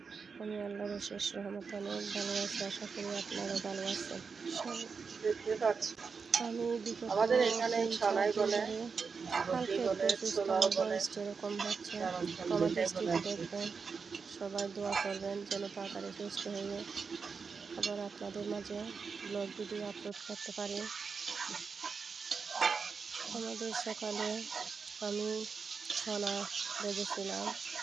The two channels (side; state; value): left; quieter; 5.3 dB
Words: আমি আল্লাহর অশেষ রহমতে অনেক ভালো আছি। আশা করি আপনারাও ভালো আছেন। দেখতে পাচ্ছি আমি বিগত আমাদের এখানে 3-4 সানাই দিন বলে, ধরে বটি হালকা একটু বলে, অসুস্থ, ছোলাও আমার বলে, ভয়েসটা এরকম হচ্ছে। রামছান ক্ষমা দুইটাই বলে দৃষ্টিতে আর কি। দেখবেন। সবাই দোয়া করবেন যেন তাড়াতাড়ি সুস্থ হয়ে আবার আপনাদের মাঝে ব্লগ ভিডিও আপলোড করতে পারি। আমাদের সকালে আমি ছনা ভেজেছিলাম।